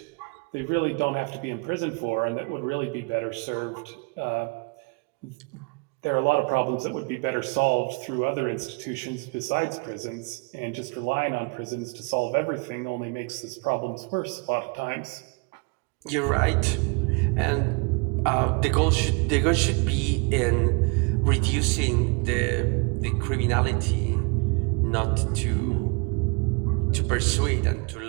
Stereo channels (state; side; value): quieter; left; 31.4 dB